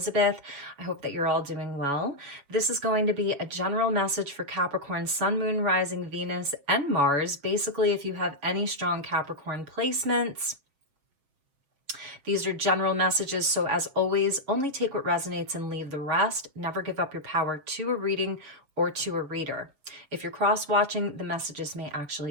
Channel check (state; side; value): late; left; 7.1 ms